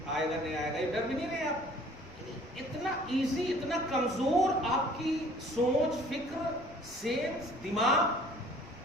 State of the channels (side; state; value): left; noise; rumble, 21 dB below the sound